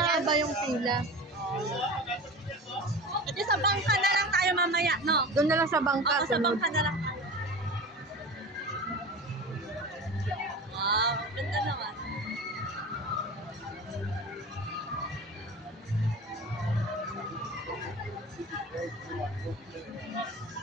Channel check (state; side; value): normal; both; correlation 0.33